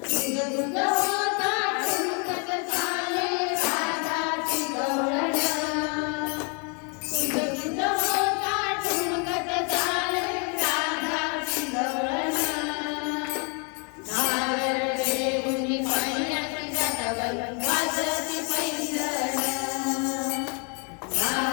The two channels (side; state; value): right; quieter; 36.7 dB